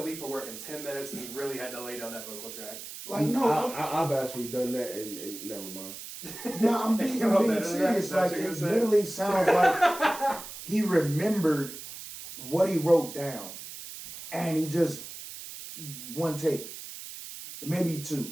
leave for work in 10 minutes and he really had to lay down that vocal track. Like, no, I've actually done that and never mind. no, I'm being serious. Like, it literally sounds like he remembered what he wrote down, and he just one take, maybe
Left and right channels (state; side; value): noise; right; hiss, 11 dB below the sound